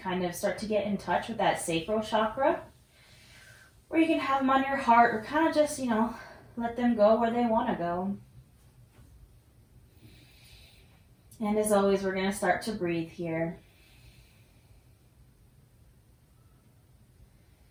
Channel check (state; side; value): identical; both; correlation 1.00